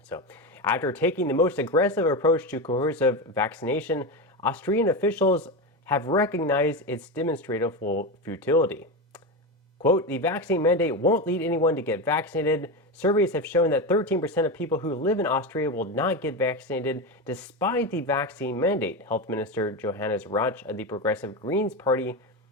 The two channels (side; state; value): both; normal; correlation 0.17